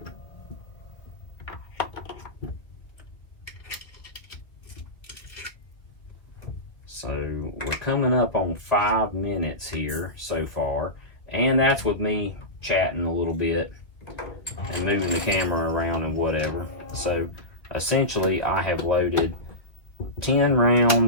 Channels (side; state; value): right; late; 1.7 ms